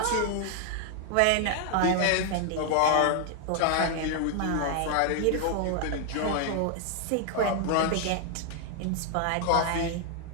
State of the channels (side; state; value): both; different; correlation 0.00